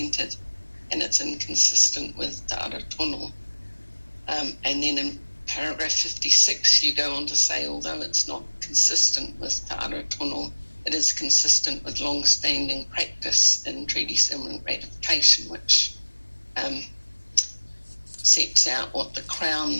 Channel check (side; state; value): both; inverted; correlation -1.00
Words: and it's inconsistent with Te Ara Tono. And then in paragraph 56, you go on to say, although it's not consistent with Te Ara Tono, it is consistent with long-standing practice in treaty settlement ratification, which sets out what the